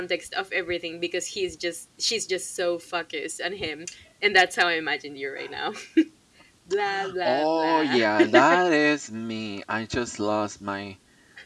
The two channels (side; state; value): both; identical; correlation 1.00